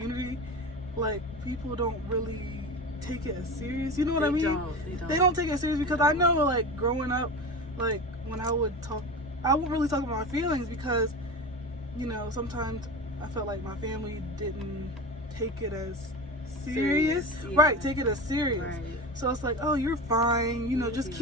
like, people don't really take it as serious. You know what I mean? They don't take it serious, because I know, like, growing up, like, when I would talk, I wouldn't really talk about my feelings, because, you know, sometimes I felt like my family didn't take it as serious. Yeah. Right, take it as serious. Right. So it's like, oh, you're fine, you know, You'll just be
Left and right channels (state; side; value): normal; both; correlation 0.27